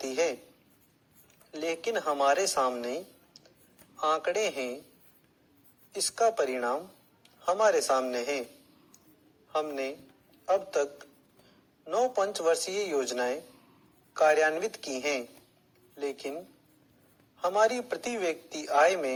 है, लेकिन हमारे सामने आंकड़े हैं। इसका परिणाम हमारे सामने है। हमने अब तक 9 पंचवर्षीय योजनाएं कार्यान्वित की हैं, लेकिन हमारी प्रति व्यक्ति आय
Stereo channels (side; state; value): both; identical; correlation 1.00